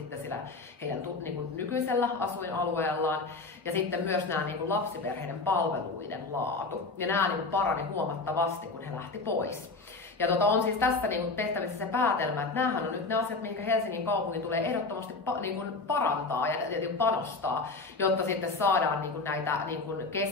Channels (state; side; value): quieter; right; 3.7 dB